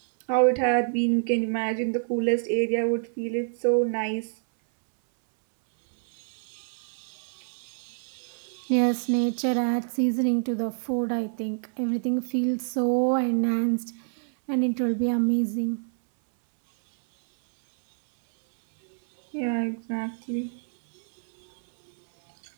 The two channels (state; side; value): silent; left; 60 dB below the other